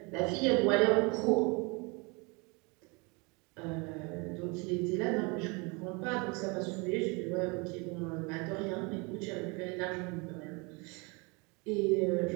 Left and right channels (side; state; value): left; quieter; 29.3 dB